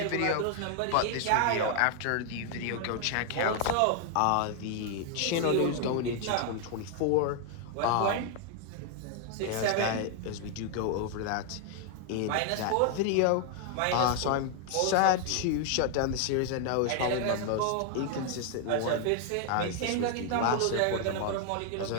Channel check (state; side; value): different; both; correlation 0.00